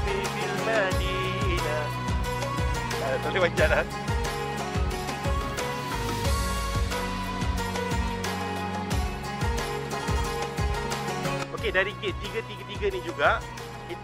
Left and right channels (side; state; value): both; identical; correlation 1.00